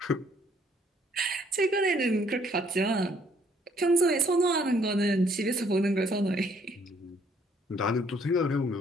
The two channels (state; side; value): normal; both; correlation 0.64